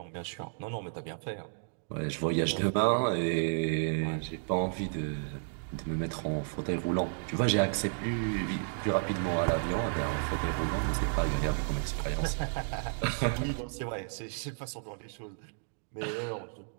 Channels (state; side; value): silent; left; digital silence